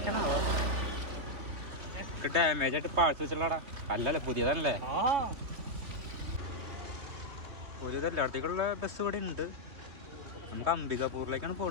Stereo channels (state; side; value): late; left; 2.9 ms